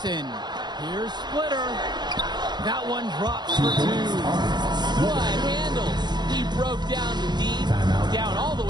Here's Splitter. That one drops for two. What handles? He broke down the D, down all the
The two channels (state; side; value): late; left; 0.21 ms